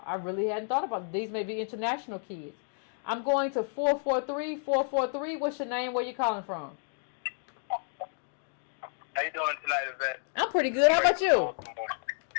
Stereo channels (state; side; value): silent; right; digital silence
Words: These may be international kids. I'm going to 443. What's your name? Where you calling from? How you doing tonight, Yvette? I'm pretty good. How about you?